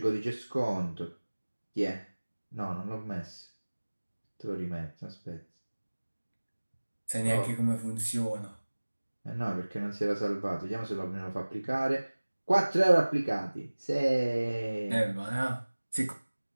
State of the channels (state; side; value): inverted; both; correlation -1.00